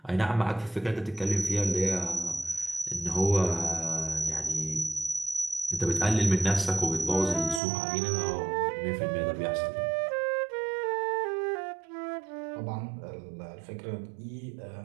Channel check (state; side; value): drops out; left; at 7.6 s